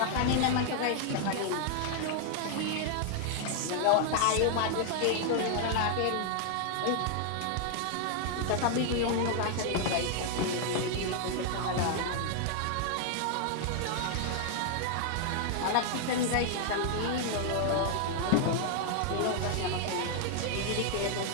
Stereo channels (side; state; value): both; different; correlation 0.00